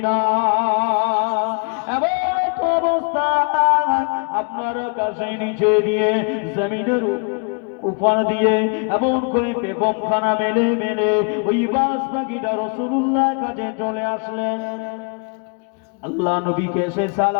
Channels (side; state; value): right; quieter; 37.7 dB